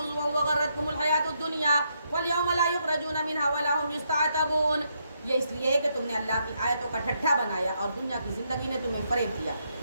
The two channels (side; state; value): both; inverted; correlation -0.77